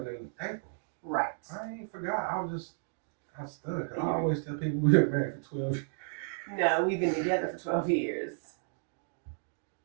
in April. Right. I ain't forgot. I was stunned. Because I always tell people we've been married for 12 years. No, we've been together for 12 years.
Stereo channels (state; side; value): silent; left; digital silence